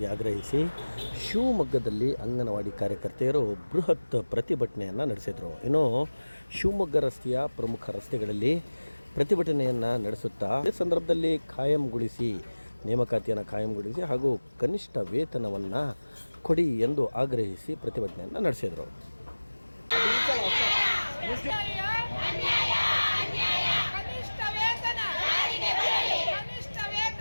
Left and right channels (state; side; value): inverted; both; correlation -1.00